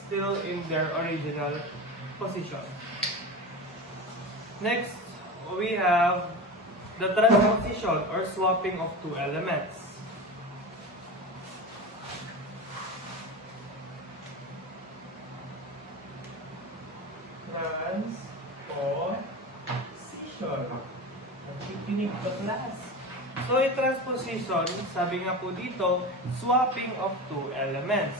in their original position. Next, we have the transposition or swapping of two elements. Transposition. Nakikinig ka, class. So, yung transposition, sabi nga po dito, swapping of two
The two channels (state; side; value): normal; both; correlation 0.26